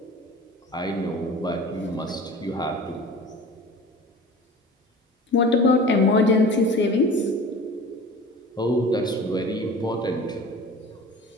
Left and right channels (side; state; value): both; normal; correlation 0.39